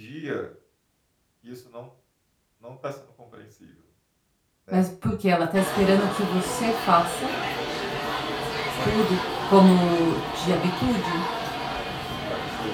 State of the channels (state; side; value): identical; both; correlation 1.00